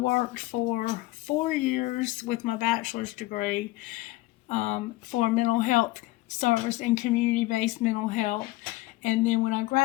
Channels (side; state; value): right; quieter; 19.1 dB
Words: for 4 years with my bachelor's degree for mental health service and community-based mental health. And then when I